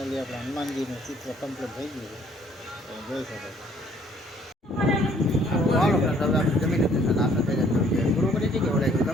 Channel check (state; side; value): normal; both; correlation 0.61